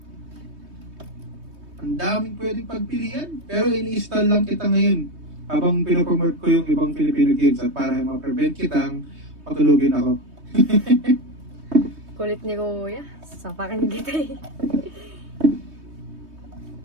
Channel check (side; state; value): left; late; 3.2 ms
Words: Ang daming pwedeng pagpilian. Pero ini-install lang kita ngayon habang pinopromote ko yung ibang Filipino games at para ma-prevent kitang patulugin ako. Kulit ni Kuya. Sapakan kita eh.